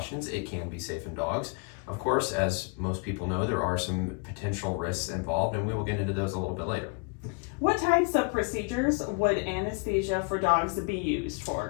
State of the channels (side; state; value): right; quieter; 33.1 dB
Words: it can be safe in dogs. Of course, as most people know, there are some potential risks involved, and we will get into those a little bit later. What types of procedures would anesthesia for dogs be used